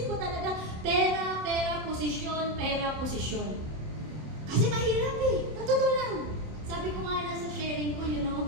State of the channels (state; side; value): late; left; 27 ms